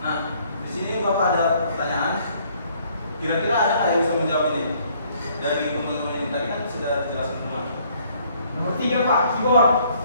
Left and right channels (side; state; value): both; inverted; correlation -0.63